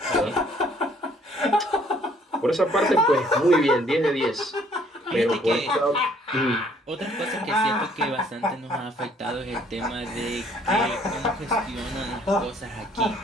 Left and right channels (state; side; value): normal; both; correlation 0.62